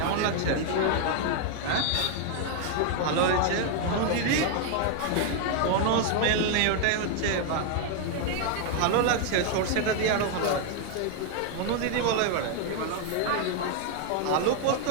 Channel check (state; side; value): different; both; correlation 0.00